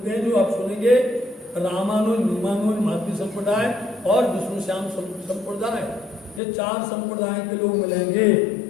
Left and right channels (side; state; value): right; drops out; at 6.4 s